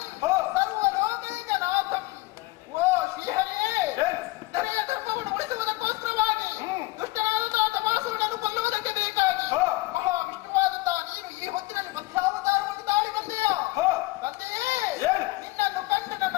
ಸರ್ವಲೋಕೈಕನಾಥಂ. ಓ ಶ್ರೀಹರಿಯೇ, ಧರೆಯ ಧರ್ಮವನ್ನು ಉಳಿಸುವುದಕ್ಕೋಸ್ಕರವಾಗಿ ದುಷ್ಟನಾದಂತಹ ತಮಾಸುರನನ್ನು ಕೊಲ್ಲುವುದಕ್ಕೆ ಬೇಕಾಗಿ ಮಹಾವಿಷ್ಣುವಾದಂತಹ ನೀನು ಈ ಹೊತ್ತಿನಲ್ಲಿ ಮಧ್ಯಾವತಾರವನ್ನು ತಾಳಿ ಬಂದೆಯ ತಂದೆಯೇ. ನಿನ್ನನ್ನು ಕಂಡು ನನ್ನ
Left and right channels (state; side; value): quieter; right; 20.7 dB